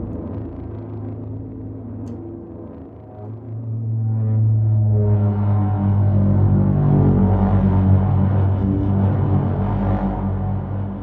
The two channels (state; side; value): identical; both; correlation 1.00